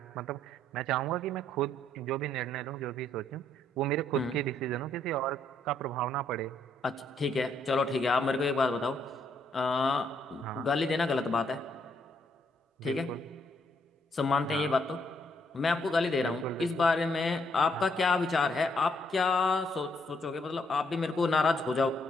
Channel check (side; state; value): both; normal; correlation 0.72